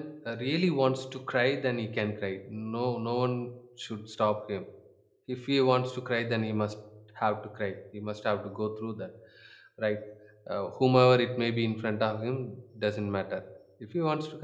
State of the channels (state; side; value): identical; both; correlation 1.00